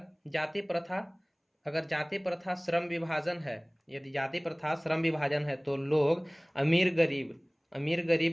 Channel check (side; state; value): both; identical; correlation 1.00